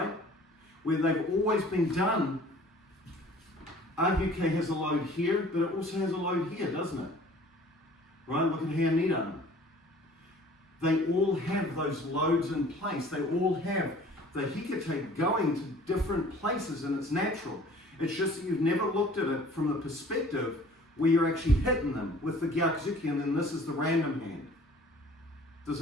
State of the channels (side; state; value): both; normal; correlation 0.50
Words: Where they've always been done. Agyuke has a load here, but it also has a load here, doesn't it? Right? Look at here, Nidan. They all have those loads in place. They all have the hikite going to different places, and it's natural. It's just that you've never looked at it from the perspective where you're actually hitting them with the gyakuzuki, and then this is the random hand. Does